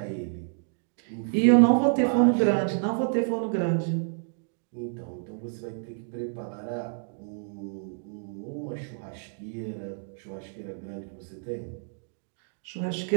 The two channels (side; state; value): left; silent; digital silence